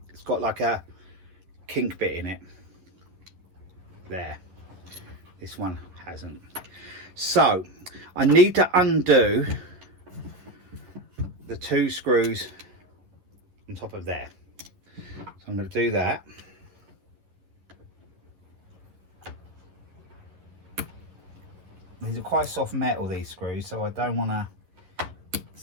It's got like a kink bit in it there. This one hasn't. So I need to undo the 2 screws on top of there. So I'm going to do that. These are quite soft metal, these screws, so I don't want to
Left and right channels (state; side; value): late; left; 11 ms